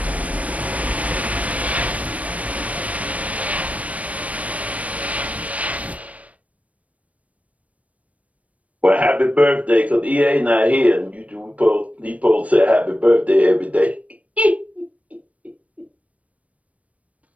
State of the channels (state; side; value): late; left; 0.068 ms